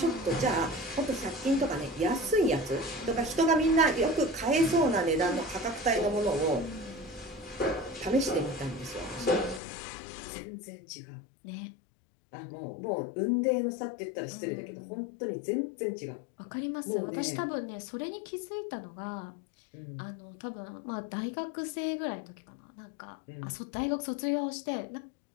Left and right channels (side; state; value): right; drops out; at 9.6 s